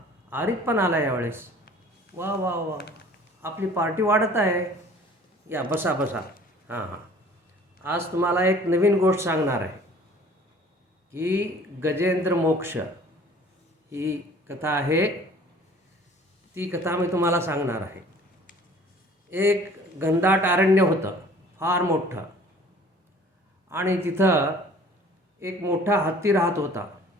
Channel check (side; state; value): both; normal; correlation 0.50